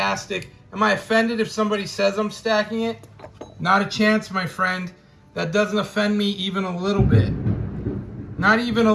Am I offended if somebody says I'm stacking it? Not a chance, my friend. That doesn't offend me even a little bit. Not even a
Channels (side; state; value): both; identical; correlation 1.00